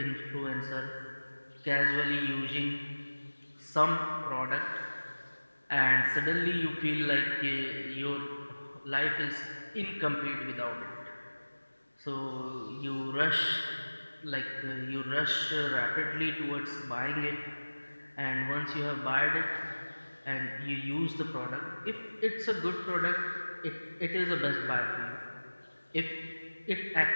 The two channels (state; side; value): inverted; both; correlation -1.00